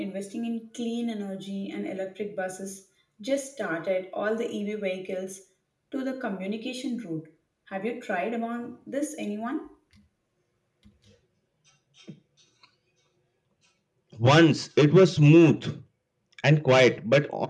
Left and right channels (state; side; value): identical; both; correlation 1.00